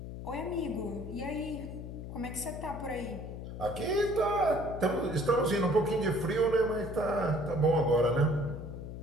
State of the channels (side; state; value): left; noise; hum, 9 dB below the sound